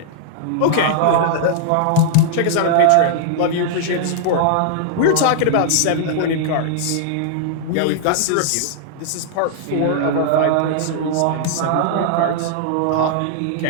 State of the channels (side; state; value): both; different; correlation -0.01